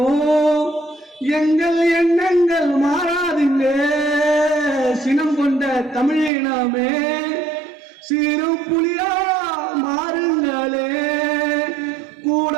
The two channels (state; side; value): drops out; left; at 6.3 s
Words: எங்கள் எண்ணங்கள் மாறாதுங்க. சினம் கொண்ட தமிழினமே சீரும் புலியா மாறுங்களே,